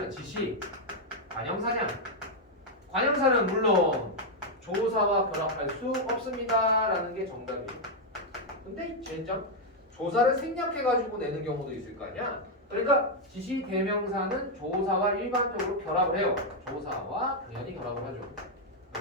지시관형사냐. 관형사는 물론 조사와 결합할 수 없습니다 라는 게 정답이에요. 근데 젠장 조사를 생략해가지고 내는 경우도 있을 거 아니야. 그러니까 지시대명사는 조사와 일반적으로 결합을 해요. 조사와 당연히 결합을 하죠.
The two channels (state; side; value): normal; both; correlation 0.00